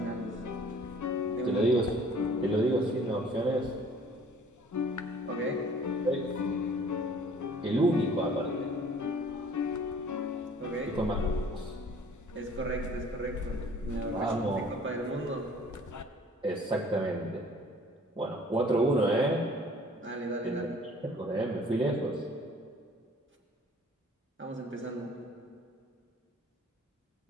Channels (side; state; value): both; normal; correlation 0.53